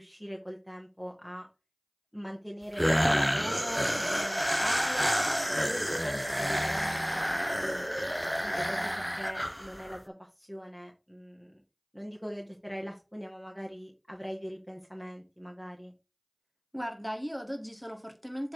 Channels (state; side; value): identical; both; correlation 1.00